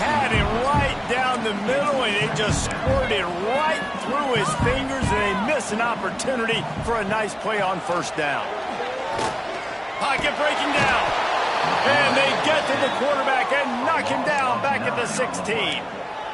had it right down the middle, and it just squirted right through his fingers, and they miss an opportunity for a nice play on first down. Pocket breaking down. And they get to the quarterback and knock him down back at the 16.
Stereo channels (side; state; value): both; identical; correlation 1.00